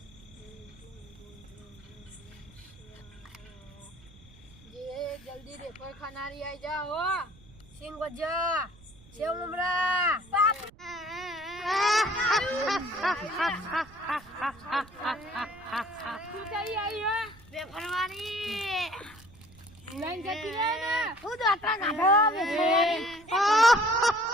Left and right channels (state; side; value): noise; right; rumble, 23 dB below the sound